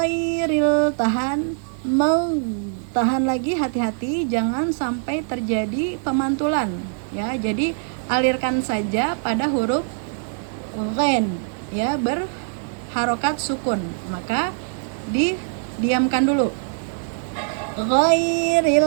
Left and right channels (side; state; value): left; silent; digital silence